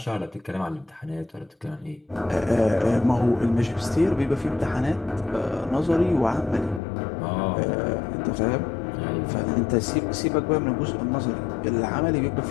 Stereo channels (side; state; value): right; drops out; at 6.8 s